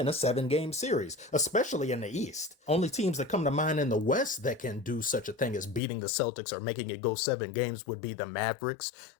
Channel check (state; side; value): drops out; right; at 5.8 s